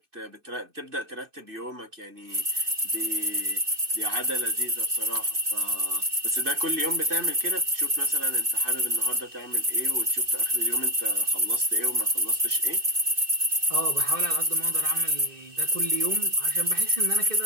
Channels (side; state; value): left; late; 2.6 ms